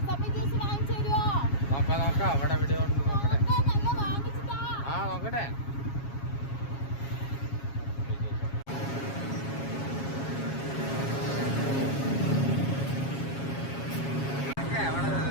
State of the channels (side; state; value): right; late; 7.3 ms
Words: നോക്കാം നോക്കാം അവിടെ എവിടെ ഉണ്ട് നോക്കട്ടെ. ആ നോക്കട്ടെ.